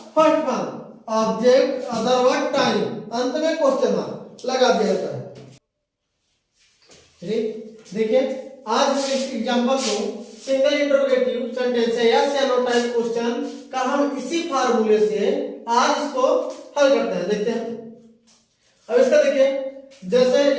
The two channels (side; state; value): both; identical; correlation 1.00